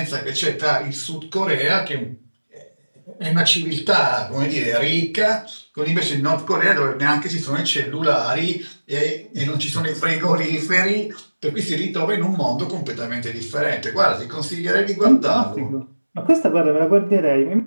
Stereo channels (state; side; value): inverted; both; correlation -1.00